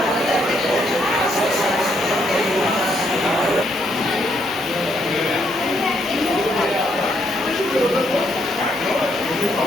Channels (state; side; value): normal; both; correlation 0.74